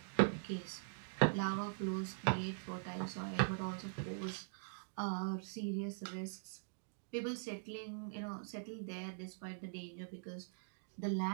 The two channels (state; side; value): silent; left; digital silence